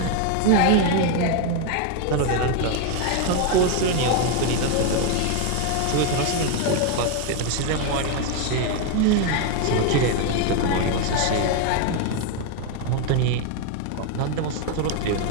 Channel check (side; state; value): both; different; correlation 0.01